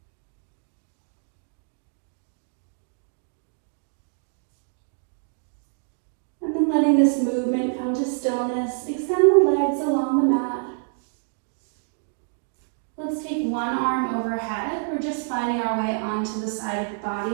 And then letting this movement come to stillness, extend the legs along the mat. Let's take one arm overhead. We're just finding our way onto the side of the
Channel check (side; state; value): left; silent; digital silence